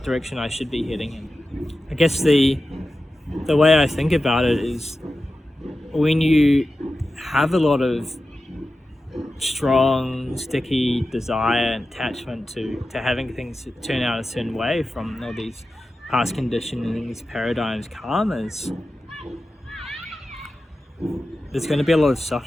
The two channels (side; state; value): both; normal; correlation 0.93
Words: direction I should be heading in. I guess the way I think about it is when you have a lot of strong, sticky desire and attachment to having things turn out a certain way from all these past conditionings, paradigms, karmas, there's going to be a lot of